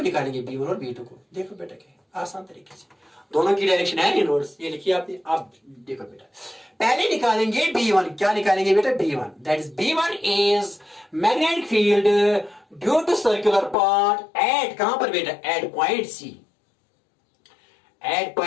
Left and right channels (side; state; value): right; drops out; at 13.8 s